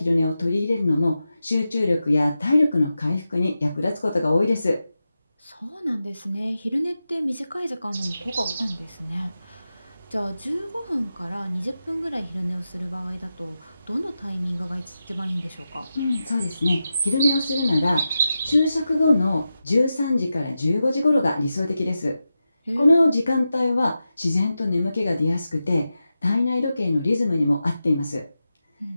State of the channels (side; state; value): both; inverted; correlation -0.91